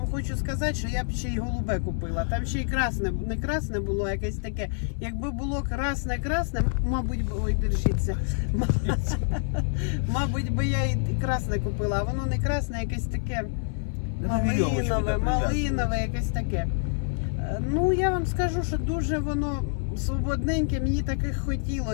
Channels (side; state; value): right; silent; 58 dB below the other